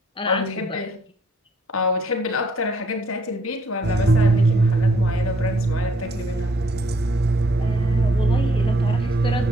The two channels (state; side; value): normal; both; correlation 0.66